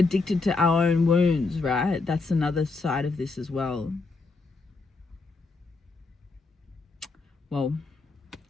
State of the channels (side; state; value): right; quieter; 3.8 dB